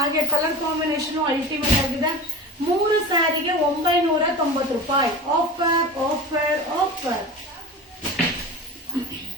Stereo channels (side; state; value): both; normal; correlation 0.34